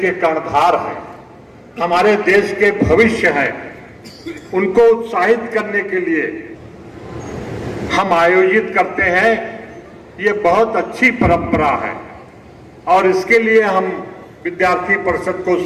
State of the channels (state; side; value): identical; both; correlation 1.00